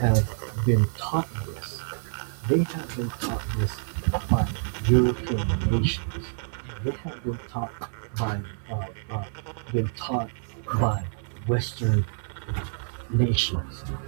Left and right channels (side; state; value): left; silent; digital silence